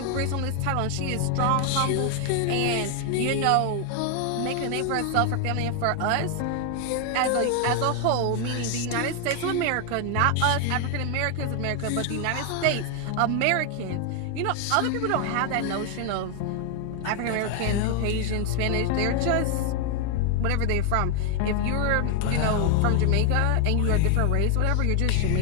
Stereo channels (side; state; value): both; different; correlation 0.00